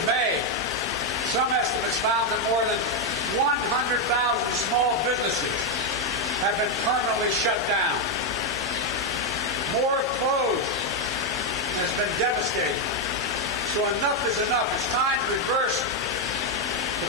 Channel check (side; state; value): both; normal; correlation 0.03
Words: May, some estimates found that more than 100,000 small businesses have been permanently shut down. More closed, and it's been devastating. So enough is enough. It's time to reverse the